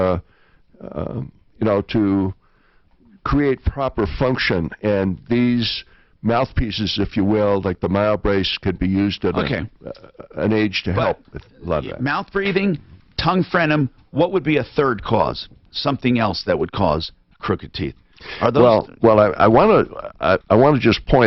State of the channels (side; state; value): both; identical; correlation 1.00